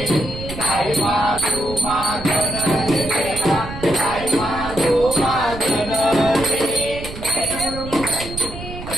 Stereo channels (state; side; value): noise; right; rumble, 11 dB below the sound